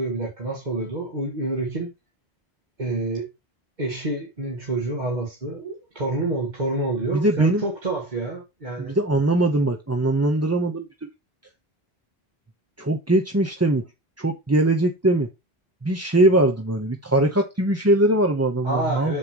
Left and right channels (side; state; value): both; normal; correlation 0.29